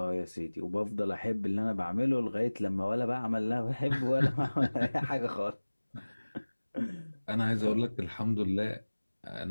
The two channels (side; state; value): both; inverted; correlation -1.00